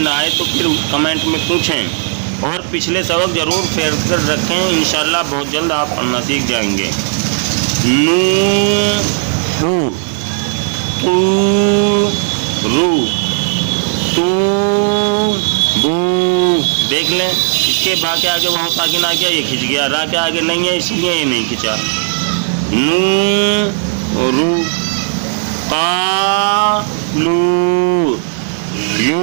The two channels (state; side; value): silent; left; digital silence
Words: نہ آئے تو پھر کمنٹ میں پوچھیں اور پچھلے سبق ضرور شیئر کر رکھیں. انشاءاللہ بہت جلد آپ پڑھنا سیکھ جائیں گے. نو ہو او رو تو بو. دیکھ لیں اس کے با کے آگے وہاں ساکن آ گیا, یہ کھنچ گیا. را کے آگے نہیں ہے اس لیے یہ نہیں کھنچا. نو رو قا لو